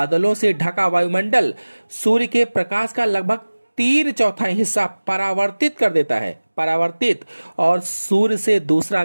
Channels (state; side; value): inverted; both; correlation -1.00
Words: से ढका वायुमंडल सूर्य के प्रकाश का लगभग 3/4 हिस्सा परावर्तित कर देता है। परावर्तित। और सूर्य से दूसरा